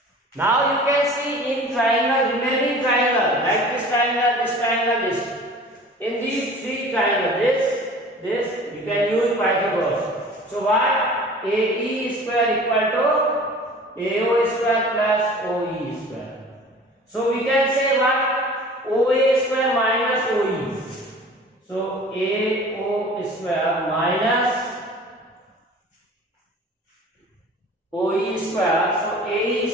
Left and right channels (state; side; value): normal; both; correlation 0.44